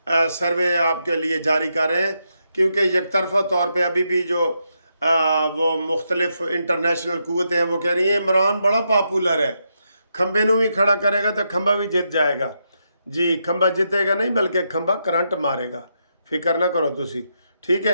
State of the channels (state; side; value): inverted; both; correlation -0.82